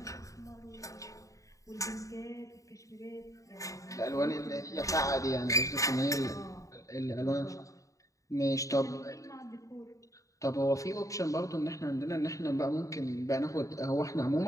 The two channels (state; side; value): late; right; 0.16 ms